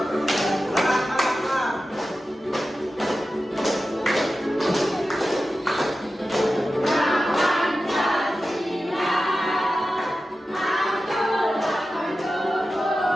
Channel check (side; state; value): both; normal; correlation 0.93